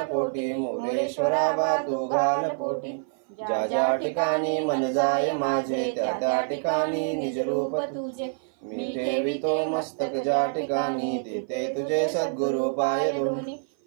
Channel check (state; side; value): silent; left; 56 dB below the other